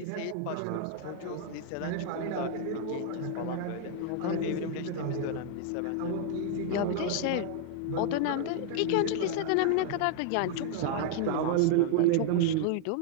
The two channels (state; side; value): different; both; correlation -0.01